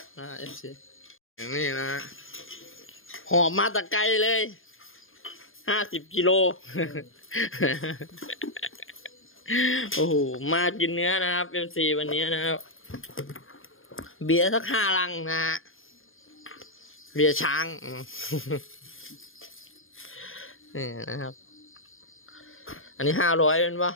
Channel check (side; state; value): right; late; 0.59 ms